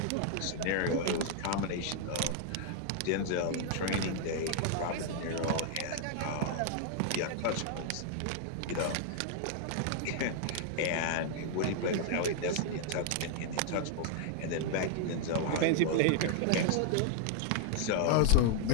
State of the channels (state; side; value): different; both; correlation 0.00